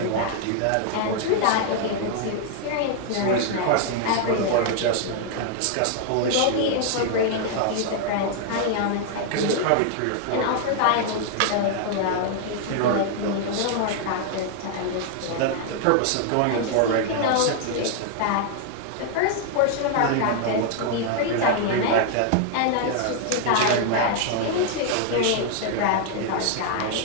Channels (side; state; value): both; different; correlation 0.00